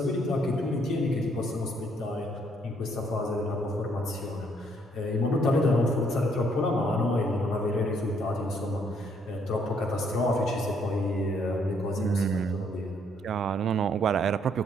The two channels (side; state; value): both; normal; correlation 0.68